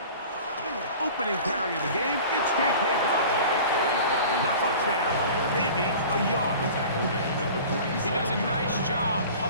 Opening carry of the game, it's J.K. Dobbins. Not much there, maybe a yard. He does a nice job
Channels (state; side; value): inverted; both; correlation -0.41